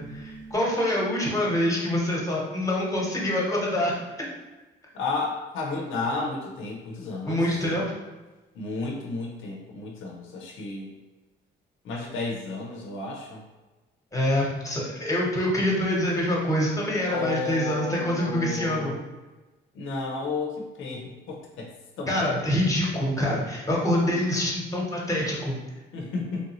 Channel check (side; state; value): both; normal; correlation 0.49